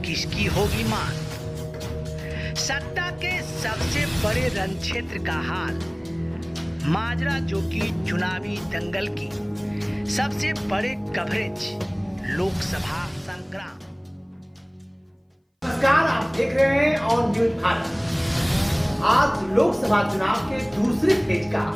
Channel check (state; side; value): identical; both; correlation 1.00